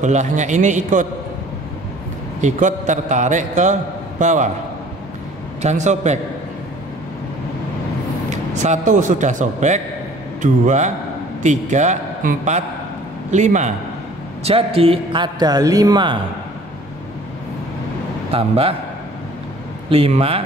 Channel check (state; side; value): normal; both; correlation 0.51